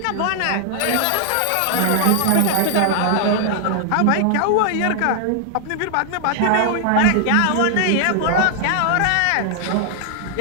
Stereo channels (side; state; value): both; different; correlation 0.00